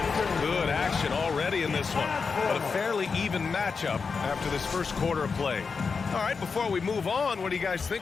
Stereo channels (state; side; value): quieter; right; 5.1 dB